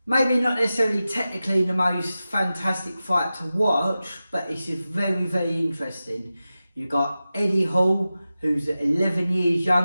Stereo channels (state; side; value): inverted; both; correlation -0.94